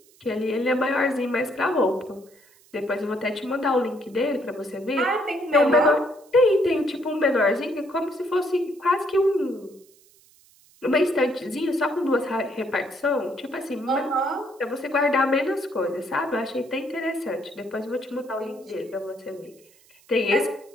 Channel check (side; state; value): right; noise; hiss, 29 dB below the sound